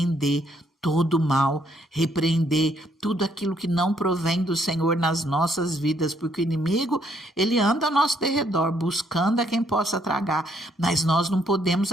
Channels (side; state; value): both; normal; correlation 0.70